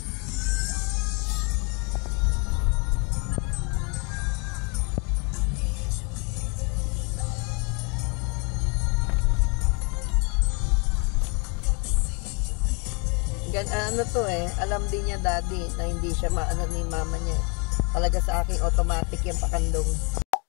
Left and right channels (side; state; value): right; quieter; 33.6 dB